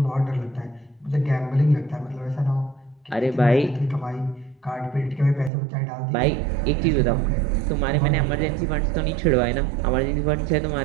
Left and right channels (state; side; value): drops out; left; at 5.5 s